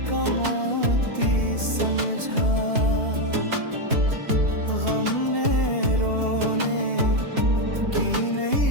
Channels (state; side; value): late; left; 2.8 ms